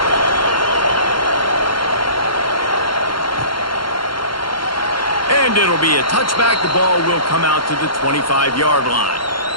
And it'll be a touchback. The ball will come out to the 25-yard line.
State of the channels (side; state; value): right; late; 0.73 ms